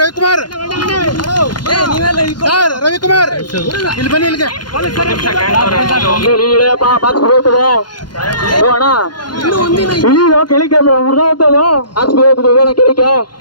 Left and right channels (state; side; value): late; right; 0.71 ms